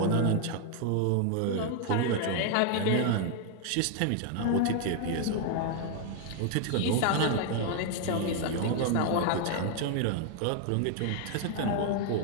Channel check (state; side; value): different; both; correlation 0.00